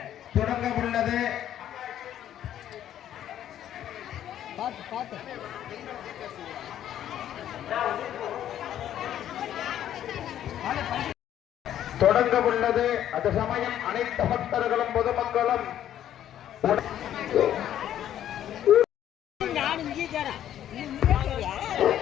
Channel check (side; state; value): right; quieter; 11.1 dB